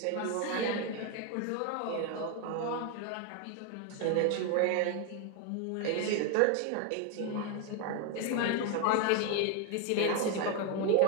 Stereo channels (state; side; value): different; both; correlation 0.01